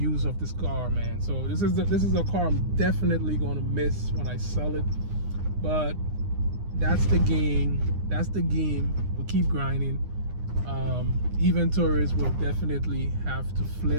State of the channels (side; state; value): left; late; 9.8 ms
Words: of this car, man. So this is a car I'm definitely gonna miss when I sell it. But that's the game. We keep grinding. Inventories will definitely have to